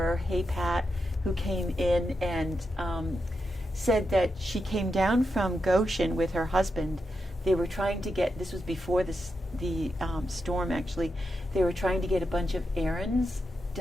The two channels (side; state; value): both; normal; correlation 0.86